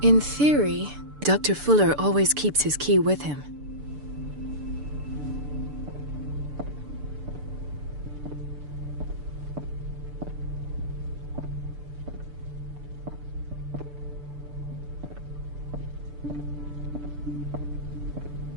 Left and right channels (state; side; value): late; left; 6.8 ms